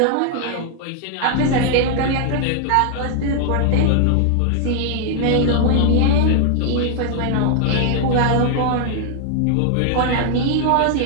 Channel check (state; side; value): different; both; correlation 0.00